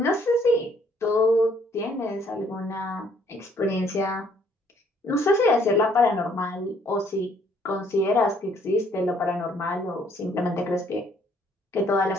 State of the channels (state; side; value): normal; both; correlation 0.64